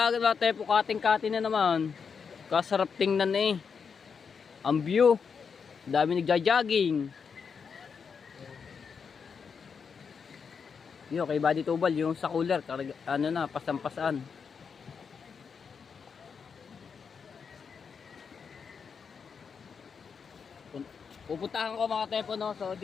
ate po. Kating-kating na naman. Kasarap tingnan eh. Ang view. Dami nagja-jogging. Yo, kay Buddy Tubal yung sa cooler. Ano na, pasampasaan. Pupuntahan ko mga tepo no, so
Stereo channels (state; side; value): quieter; right; 6.1 dB